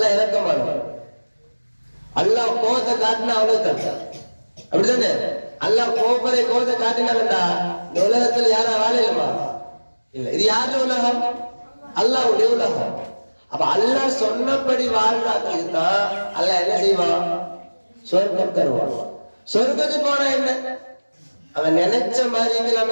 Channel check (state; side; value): inverted; both; correlation -1.00